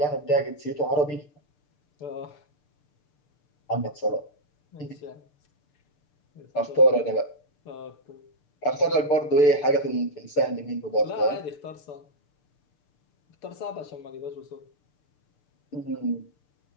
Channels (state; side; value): late; right; 6.8 ms